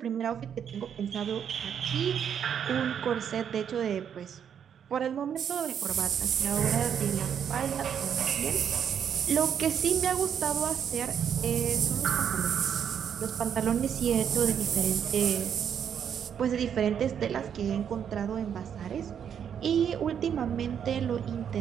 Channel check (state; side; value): quieter; left; 8.3 dB